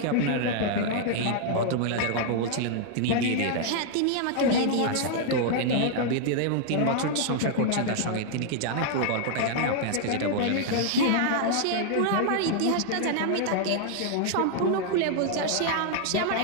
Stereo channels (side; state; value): both; different; correlation 0.00